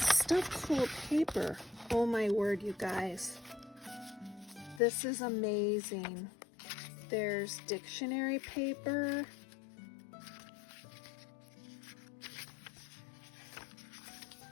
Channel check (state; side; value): drops out; right; at 4.8 s